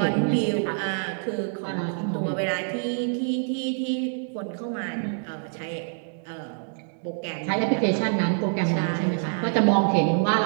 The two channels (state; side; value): silent; left; 61 dB below the other